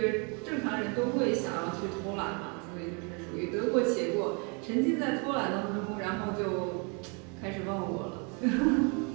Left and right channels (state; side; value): quieter; left; 34.6 dB